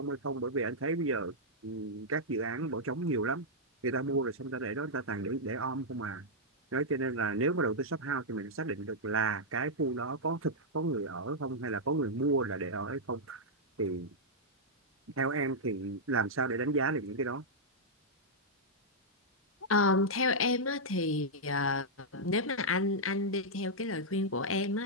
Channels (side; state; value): both; normal; correlation -0.07